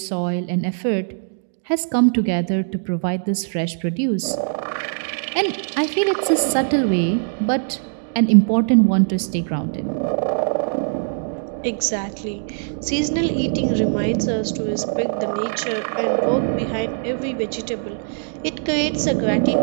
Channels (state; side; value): silent; left; digital silence